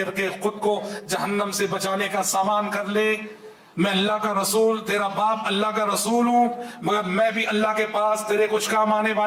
کے خود کو جہنم سے بچانے کا سامان کر لے. میں اللہ کا رسول، تیرا باپ اللہ کا رسول ہوں، مگر میں بھی اللہ کے پاس تیرے کچھ کام آنے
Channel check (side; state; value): both; identical; correlation 1.00